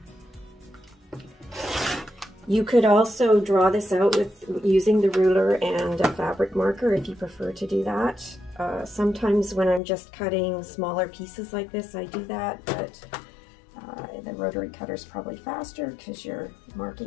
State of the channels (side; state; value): right; drops out; at 9.8 s